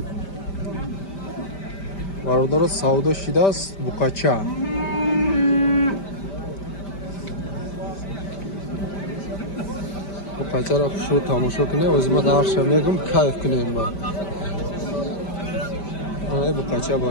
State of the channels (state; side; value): late; right; 5.1 ms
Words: Бародаро савдо шидааст буқача. Буқачаро хушрӯ тамошо кунем, озима дарша мегум кайф кунем ба. Ай буқача